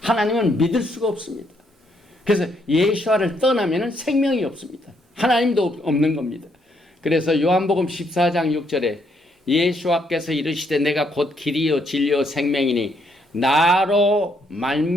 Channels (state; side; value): normal; both; correlation 0.73